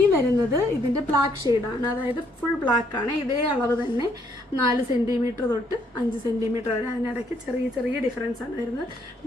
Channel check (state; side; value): normal; both; correlation 0.70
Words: വരുന്നത് ഇതിൻ്റെ ബ്ലാക്ക് ഷെയ്ഡാണ്. അതായത് ഫുൾ ബ്ലാക്കാണ്. ഇതേ അളവ് തന്നെ 4 സെൻറ്റിമീറ്റർ തൊട്ട് 5 സെൻറ്റിമീറ്റർ വരെ. അതിനിടയ്ക്ക് ചെറിയ ചെറിയ ഡിഫറൻസ് ആണ് വരുന്നത്.